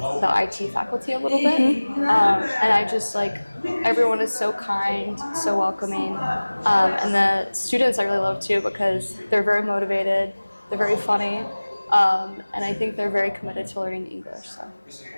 the IT faculty a little bit. And I just like, everyone is so kind, so welcoming. And the students I really love too because they're very motivated, they're very funny. And I think they're very committed to learning English, so that's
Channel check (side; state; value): both; inverted; correlation -1.00